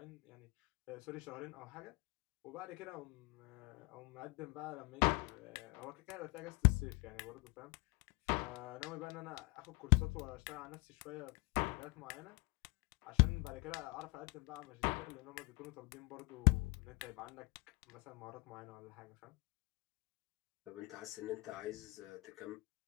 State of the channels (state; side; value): quieter; right; 25.7 dB